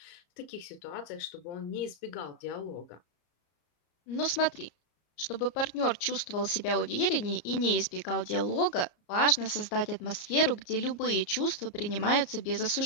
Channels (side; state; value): right; late; 34 ms